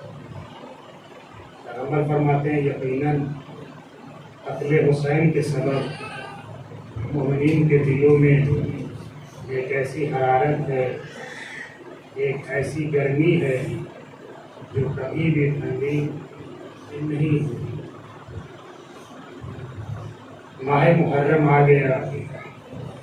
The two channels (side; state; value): both; identical; correlation 1.00